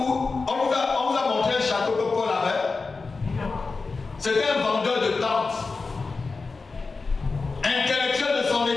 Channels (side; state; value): right; quieter; 4.1 dB